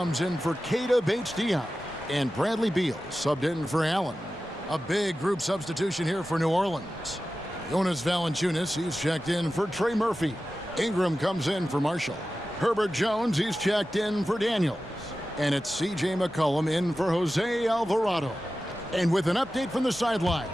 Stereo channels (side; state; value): both; normal; correlation 0.94